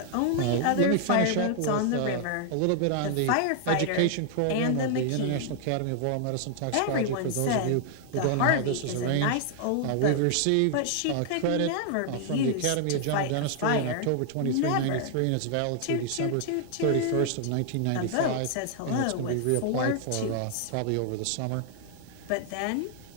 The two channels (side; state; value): both; different; correlation -0.01